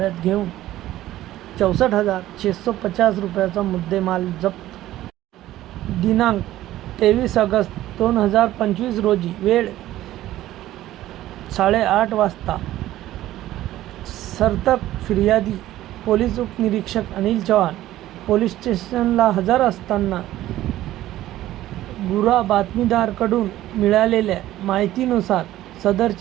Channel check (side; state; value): left; quieter; 14.5 dB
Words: घेऊन 64,650 रुपयाचा मुद्देमाल जप्त। दिनांक 23 ऑगस्ट 2025 रोजी वेळ 8:30 वाजता सर्तक फिर्यादी पोलीस उपनिरीक्षक अनिल चव्हाण पोलीस स्टेशनला हजर असताना गुरा बातमीदाराकडून मिळालेल्या माहितीनुसार